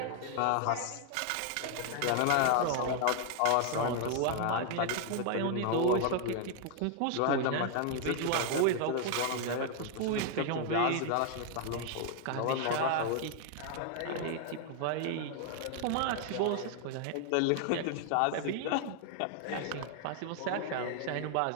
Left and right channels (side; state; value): both; different; correlation 0.00